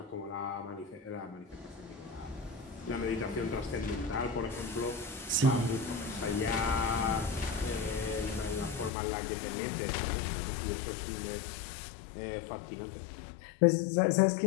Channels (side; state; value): right; drops out; at 8.9 s